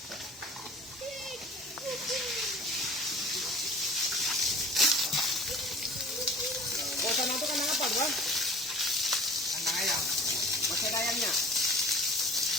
Sana itu kandang apa, Bang? Kandang ayam. Masih ada ayamnya?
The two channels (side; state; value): both; normal; correlation 0.45